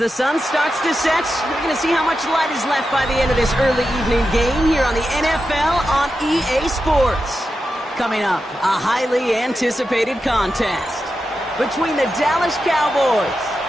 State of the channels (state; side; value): normal; both; correlation 0.89